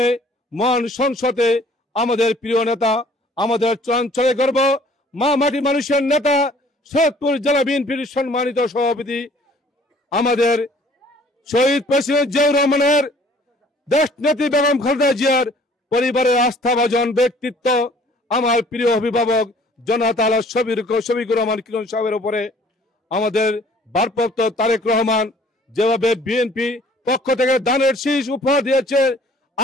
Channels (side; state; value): both; normal; correlation 0.55